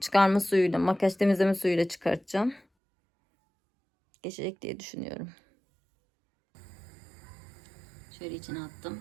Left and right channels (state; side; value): drops out; left; at 2.6 s